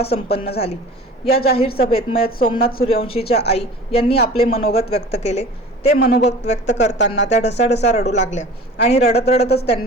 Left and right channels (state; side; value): normal; both; correlation 0.40